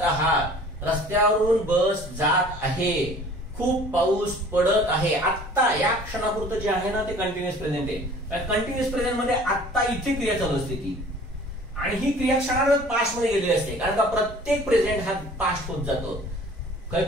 आहात, रस्त्यावरून बस जात आहे, खूप पाऊस पडत आहे. आता या क्षणापुरतं जे आहे ना ते कंटिन्युअस प्रेझेंट आहे. कंटिन्युअस प्रेझेंट मध्ये आता इथे क्रिया चालू असते ती, आणि ही क्रिया क्षणार्धात पास्ट मध्ये गेलेली असते. कारण का प्रत्येक प्रेझेंट हा पास्ट होत जातो.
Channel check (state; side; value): normal; both; correlation 0.49